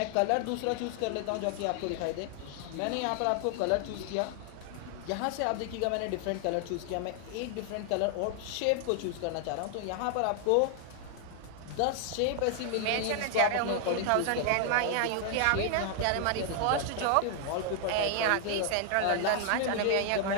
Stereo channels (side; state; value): both; different; correlation 0.00